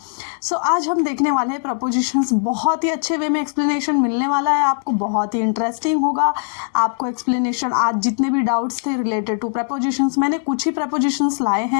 सो आज हम देखने वाले हैं प्रपोजिशंस. बहुत ही अच्छे वे में एक्सप्लेनेशन मिलने वाला है आपको, बहुत ही इंटरेस्टिंग होगा आपको एक्सप्लेनेशन. आज जितने भी डाउट्स थे रिलेटेड टू प्रपोजिशंस, मैंने कुछ ही प्रपोजिशंस लाए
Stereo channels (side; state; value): right; silent; digital silence